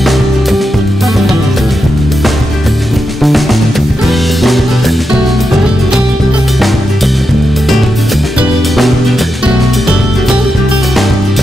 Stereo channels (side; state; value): both; normal; correlation 0.87